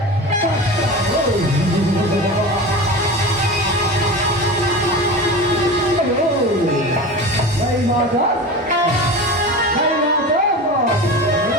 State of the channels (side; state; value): both; normal; correlation 0.30